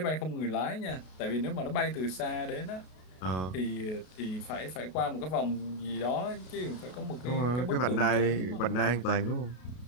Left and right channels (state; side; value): late; right; 32 ms